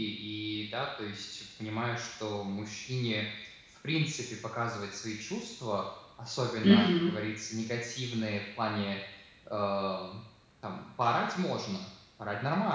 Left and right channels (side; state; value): both; identical; correlation 1.00